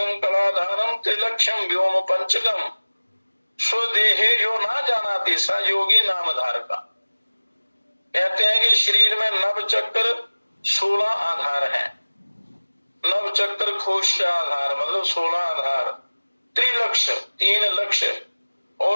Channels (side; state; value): both; inverted; correlation -1.00